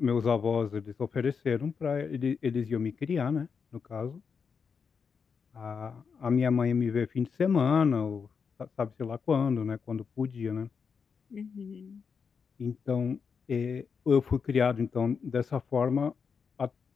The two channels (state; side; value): quieter; right; 6.0 dB